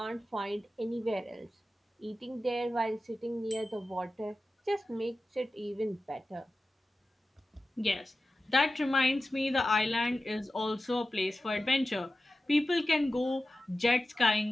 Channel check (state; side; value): normal; both; correlation 0.94